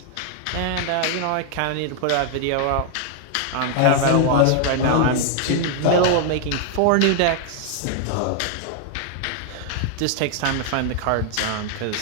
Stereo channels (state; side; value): different; both; correlation 0.00